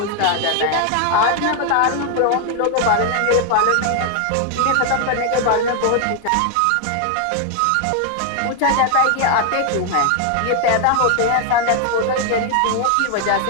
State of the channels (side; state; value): both; different; correlation 0.00